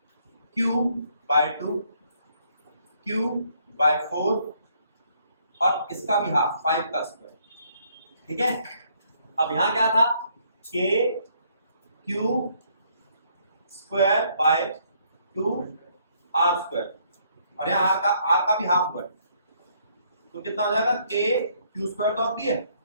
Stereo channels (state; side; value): inverted; both; correlation -0.67